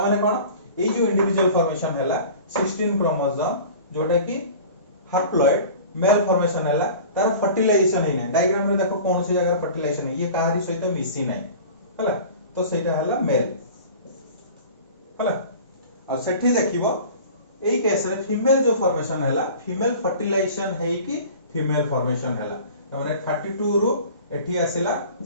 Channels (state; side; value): inverted; both; correlation -0.41